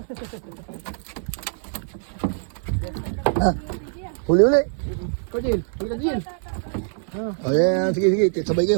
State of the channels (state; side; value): silent; left; 63 dB below the other